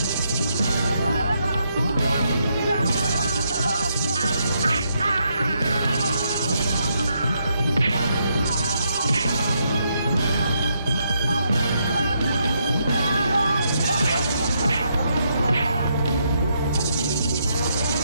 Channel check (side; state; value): both; inverted; correlation -0.78